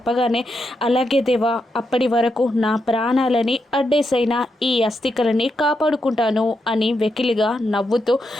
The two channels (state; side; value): normal; both; correlation 0.83